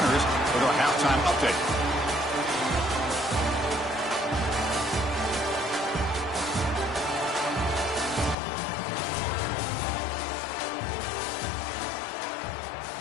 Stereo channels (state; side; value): drops out; right; at 8.3 s